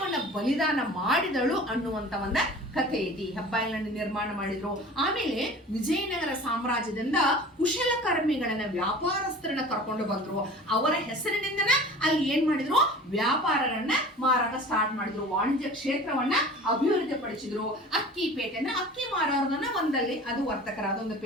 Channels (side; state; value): both; normal; correlation 0.41